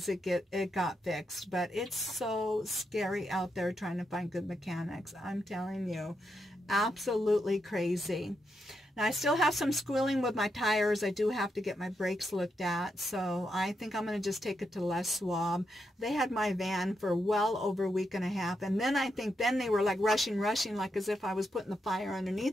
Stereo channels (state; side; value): normal; both; correlation 0.83